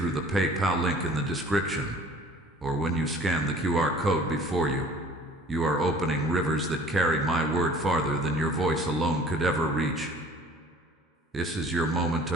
the PayPal link in the description, or when you scan the QR code before you, you are opening rivers that carry my word farther than your voice alone could ever reach. This is your moment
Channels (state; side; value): normal; both; correlation 0.49